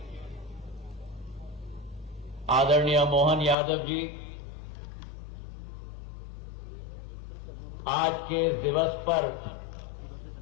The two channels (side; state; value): right; drops out; at 3.6 s